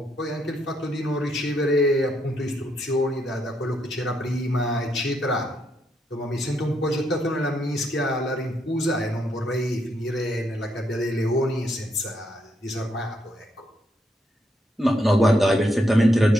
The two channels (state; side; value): normal; both; correlation 0.77